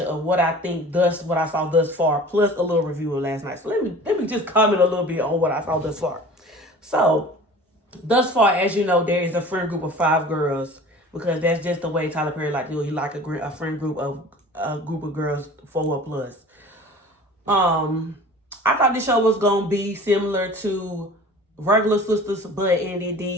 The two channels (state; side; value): normal; both; correlation 0.42